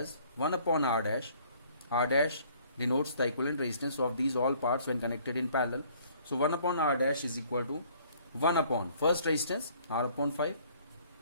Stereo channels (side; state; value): both; inverted; correlation -0.59